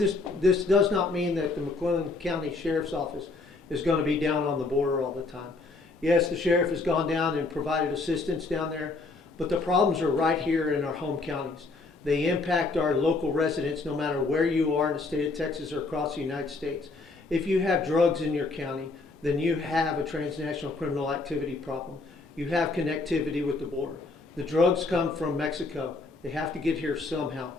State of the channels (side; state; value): right; quieter; 3.6 dB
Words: does not mean that the McLennan County Sheriff's Office is going to be down on the border all the time. Yes, the sheriff has gone down and provided assistance down there, but the problems are right here in our home counties. They impact our local residents no matter where you are in the state of Texas or across the United States. If you have drugs in your county, then you have a transnational criminal activity problem. You have connectivity with the border. The drugs come from Mexico. They have to get here somehow.